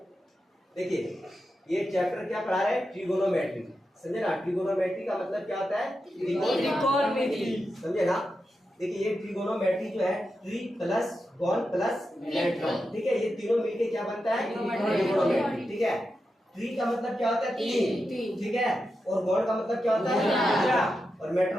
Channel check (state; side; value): normal; both; correlation 0.89